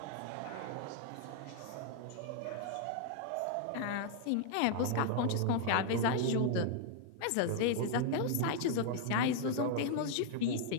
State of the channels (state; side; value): different; both; correlation 0.00